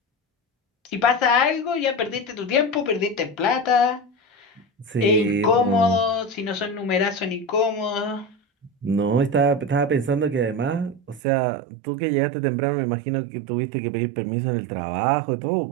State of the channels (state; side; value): drops out; left; at 11.2 s